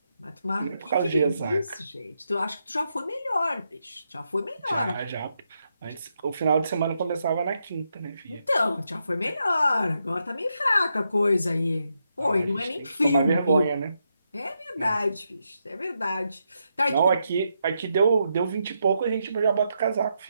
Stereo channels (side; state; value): both; inverted; correlation -0.82